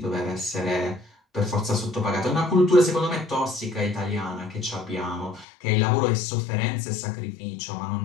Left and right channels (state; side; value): drops out; right; at 5.5 s